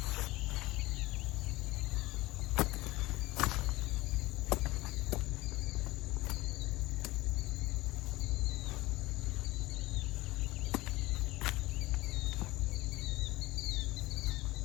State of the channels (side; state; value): right; quieter; 19.6 dB